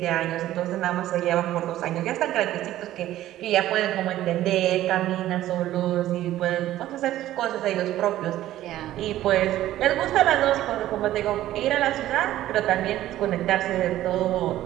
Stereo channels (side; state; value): left; quieter; 13.9 dB